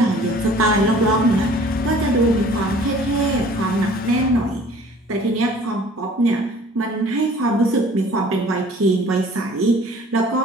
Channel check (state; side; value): normal; both; correlation 0.51